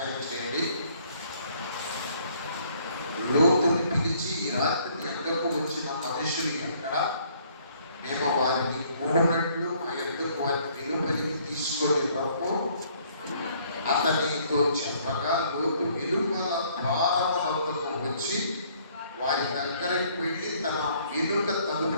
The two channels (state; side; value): inverted; both; correlation -0.62